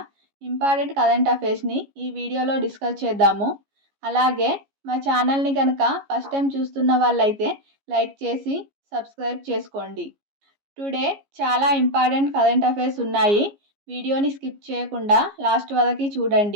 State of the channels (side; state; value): left; late; 15 ms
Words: important current అఫైర్స్ని ఈ వీడియోలో డిస్కస్ చేద్దాము. అలాగే మా ఛానల్ని కనుక ఫస్ట్ టైం చూస్తున్న వాళ్ళైతే లైక్ చేసి సబ్స్క్రైబ్ చేసుకోండి. టుడే చాలా ఇంపార్టెంట్ కరెంట్ అఫైర్స్ ఉన్నాయి. వీడియోని స్కిప్ చేయకుండా లాస్ట్ వరకు